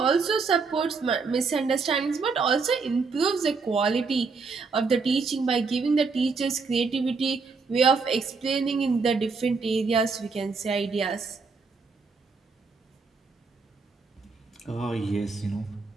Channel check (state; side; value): quieter; left; 4.6 dB